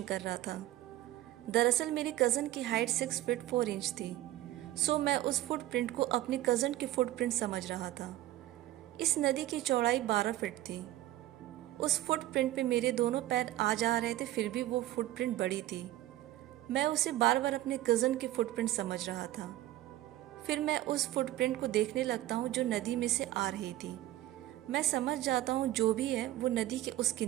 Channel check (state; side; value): quieter; left; 15.0 dB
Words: कर रहा था। दरअसल मेरे कज़न की हाइट 6 फीट 4 इंच थी, सो मैं उस फुटप्रिंट को अपने कज़न की फुटप्रिंट समझ रहा था। इस नदी की चौड़ाई 12 फीट थी। उस फुटप्रिंट पे मेरे दोनों पैर आ जा रहे थे, फिर भी वो फुटप्रिंट बड़ी थी। मैं उसे बार बार अपने कज़न की फुटप्रिंट समझ रहा था। फिर मैं उस फुटप्रिंट को देखने लगता हूँ जो नदी में से आ रही थी। मैं समझ जाता हूँ जो भी है वो नदी के उस